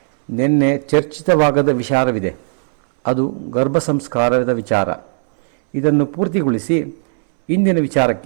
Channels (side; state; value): left; silent; 67 dB below the other